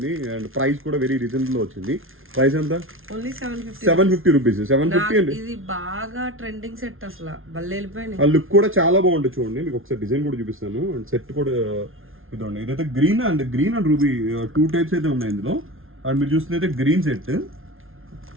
అండ్ ప్రైస్ కూడా వెరీ రీజనబుల్ వచ్చింది. ప్రైస్ ఎంత? Only 750 rupees. 750 అండి. ఇది బాగా ట్రెండింగ్ సెట్ అసలు భలే వెళ్ళిపోయింది. ఆ లుక్ కూడా చాలా బాగుంటుంది చూడండి. మీకు ఒకసారి డిజైన్ కూడా చూపిస్తాను. అండ్ సెట్ కూడా ఇదండి. ఇదైతే గ్రీన్ అండ్ రూబీ 2 టైప్స్ అయితే ఉన్నాయి ఇందులో. అండ్ మీరు చూస్తున్నైతే గ్రీన్ సెట్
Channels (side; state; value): left; late; 0.60 ms